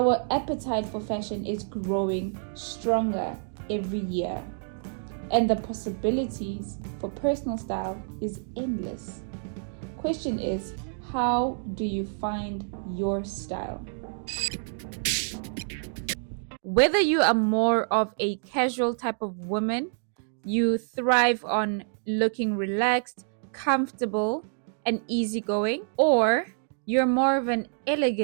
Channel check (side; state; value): left; silent; digital silence